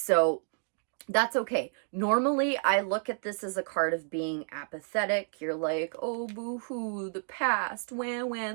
that's okay. Normally, I look at this as a card of being apathetic. You're like, oh, boo-hoo, the past, wah,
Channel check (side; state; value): left; silent; 57 dB below the other